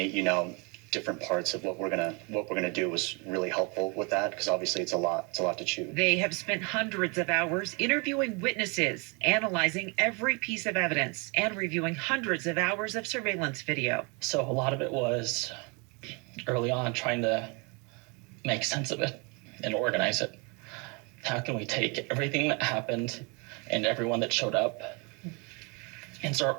parts of what we're gonna do was really helpful with that, because obviously it's a lot to chew. They have spent hundreds of hours interviewing witnesses, analyzing every piece of evidence, and reviewing hundreds of hours of surveillance video. So a lot of it was early on trying to make sense of it and organize it. How can we take everything that happened and everyone that showed up and start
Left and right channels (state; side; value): quieter; left; 31.2 dB